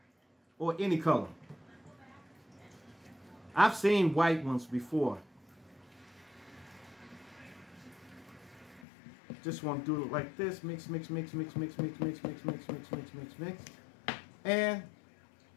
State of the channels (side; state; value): right; drops out; at 8.8 s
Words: or any color. I've seen white ones before. Just want to do it like this. Mix, mix, mix, mix, mix, mix, mix, mix, mix, mix, mix, mix, mix. And